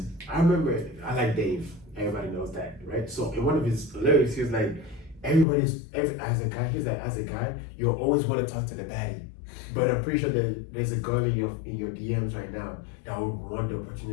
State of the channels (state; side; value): drops out; right; at 5.5 s